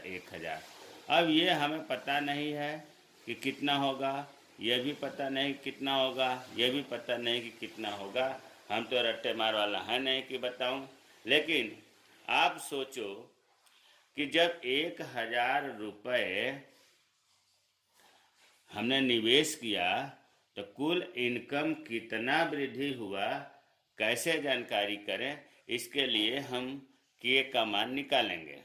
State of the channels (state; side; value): identical; both; correlation 1.00